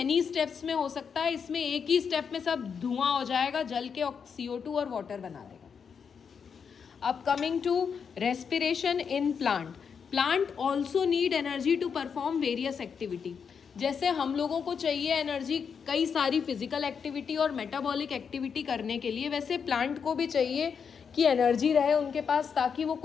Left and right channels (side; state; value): right; quieter; 6.5 dB